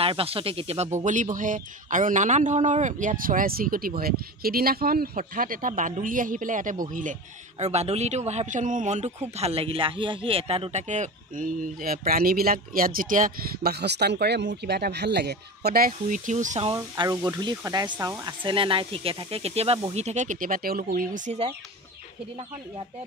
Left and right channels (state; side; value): normal; both; correlation 0.29